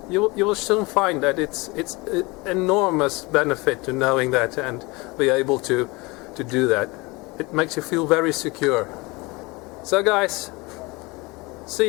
you will soon find that it's an enormous benefit to knowing that and be able to do that. It makes you feel very secure. So guys, see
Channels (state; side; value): quieter; right; 24.7 dB